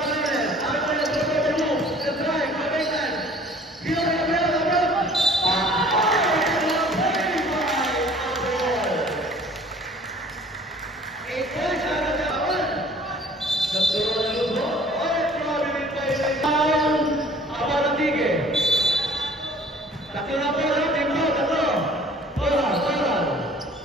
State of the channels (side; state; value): both; normal; correlation 0.52